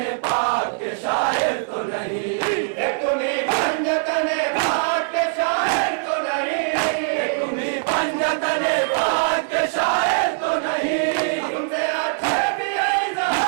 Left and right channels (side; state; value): left; silent; digital silence